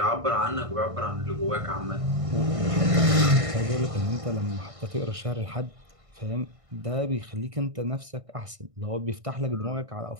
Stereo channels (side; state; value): left; late; 1.6 ms